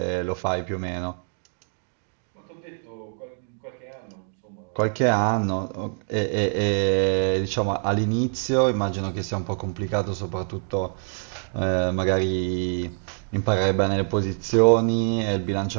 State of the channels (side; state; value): left; silent; 62 dB below the other